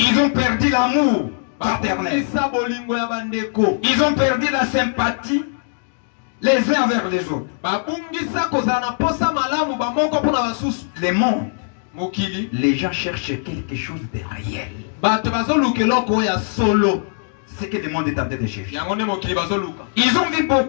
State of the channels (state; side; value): silent; right; digital silence